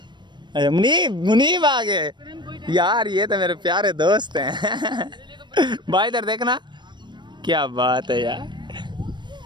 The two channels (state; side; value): late; left; 0.22 ms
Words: अरे मुनीब आ गए यार, ये तो मेरे प्यारे दोस्त हैं। भाई इधर देखना, क्या बात है यार।